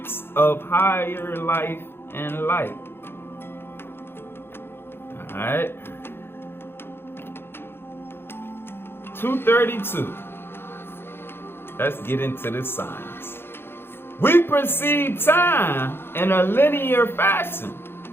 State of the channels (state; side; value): late; right; 0.11 ms